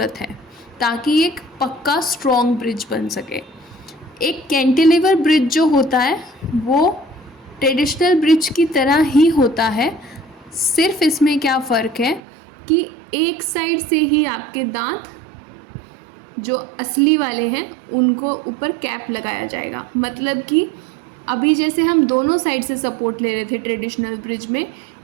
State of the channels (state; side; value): drops out; left; at 12.2 s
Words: है, ताकि एक पक्का स्ट्रॉन्ग ब्रिज बन सके। एक कैंटिलीवर ब्रिज जो होता है वो ट्रेडिशनल ब्रिज की तरह ही होता है, सिर्फ इसमें क्या फ़र्क है कि एक साइड से ही आपके दांत जो असली वाले हैं उनको ऊपर कैप लगाया जाएगा। मतलब कि अभी जैसे हम दोनों साइड से सपोर्ट ले रहे थे ट्रेडिशनल ब्रिज में,